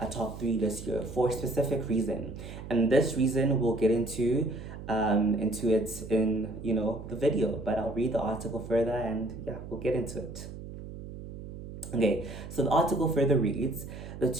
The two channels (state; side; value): noise; right; hum, 11 dB below the sound